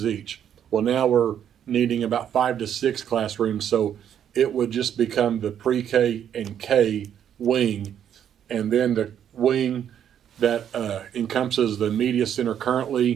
each. Well, now we're needing about 5 to 6 classrooms, so it would just become the pre-K and K wing, and then the wing that encompasses the media center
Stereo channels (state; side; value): quieter; left; 9.4 dB